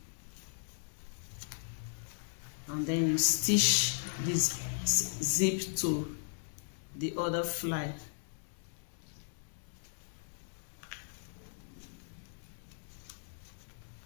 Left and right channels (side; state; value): right; silent; digital silence